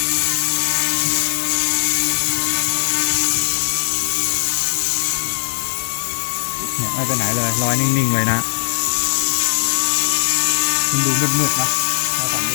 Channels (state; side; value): silent; right; digital silence